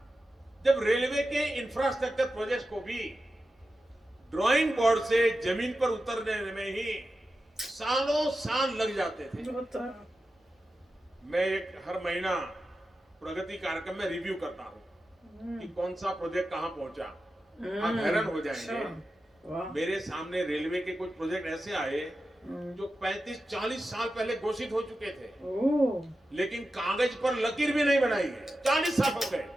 जब रेलवे के इंफ्रास्ट्रक्चर प्रोजेक्ट्स को भी ड्राइंग बोर्ड से जमीन पर उतरने में ही सालों साल लग जाते थे। मैं हर महीना प्रगति कार्यक्रम में रिव्यू करता हूं कि कौन सा प्रोजेक्ट कहां पहुंचा। आप हैरान हो जाएंगे, मेरे सामने रेलवे के कुछ प्रोजेक्ट ऐसे आए जो 35-40 साल पहले घोषित हो चुके थे, लेकिन कागज पर लकीर भी नहीं बनाई है। 40 साल हो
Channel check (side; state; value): both; normal; correlation 0.92